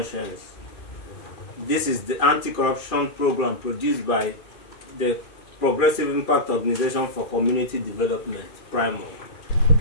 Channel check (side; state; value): right; late; 2.4 ms